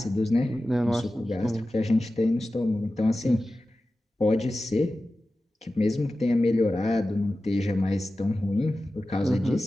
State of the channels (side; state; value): both; normal; correlation 0.94